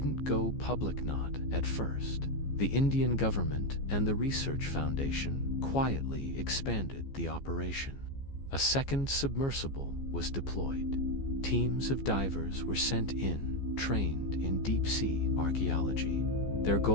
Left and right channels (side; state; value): right; late; 15 ms